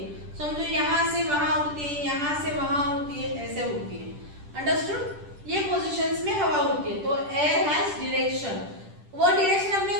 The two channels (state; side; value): late; left; 10 ms